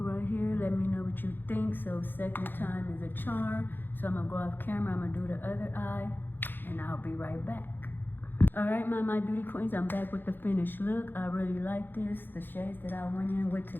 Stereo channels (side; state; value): right; late; 0.095 ms